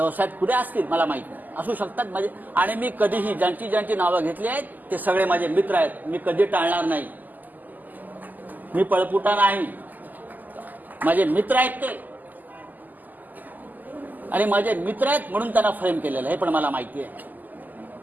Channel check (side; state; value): left; late; 0.084 ms